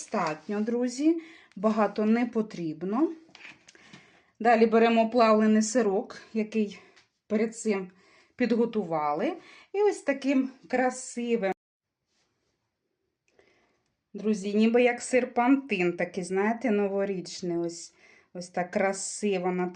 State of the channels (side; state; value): both; identical; correlation 1.00